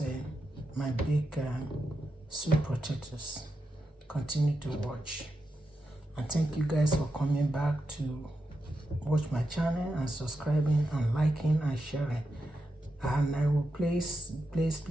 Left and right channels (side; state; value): both; normal; correlation 0.87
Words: my baked sweet potatoes. Continue to watch, and thank you guys for coming back to watch my channel and subscribing and liking and sharing. And I will please